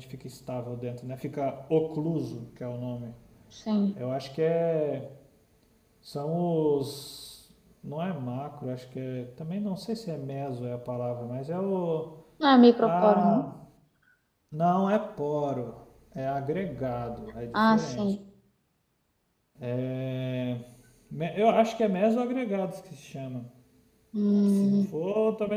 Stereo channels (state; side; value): identical; both; correlation 1.00